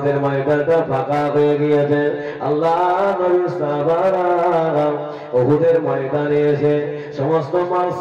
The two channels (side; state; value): both; identical; correlation 1.00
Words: ময়দানটা ফাঁকা হয়ে গিয়েছে। আল্লাহ নবী সাহাবারা উহুদের ময়দানে এসে সমস্ত মাল